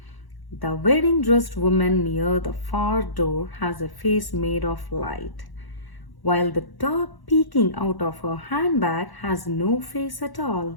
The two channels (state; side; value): late; right; 1.1 ms